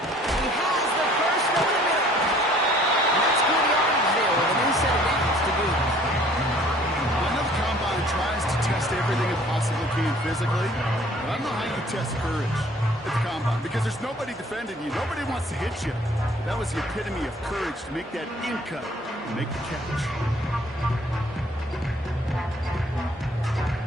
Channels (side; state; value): both; normal; correlation 0.55